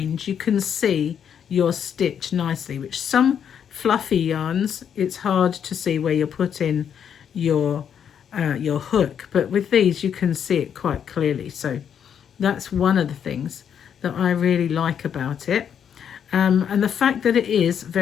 you can see your stitch nicely, which some fluffy yarns, it's hard to see where you're putting your hook, but with these you can see it quite clearly. So that's one of the things that I really like about it, and the fact that it is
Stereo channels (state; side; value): quieter; right; 8.3 dB